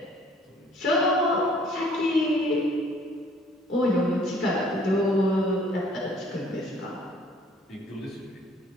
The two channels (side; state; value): both; normal; correlation 0.57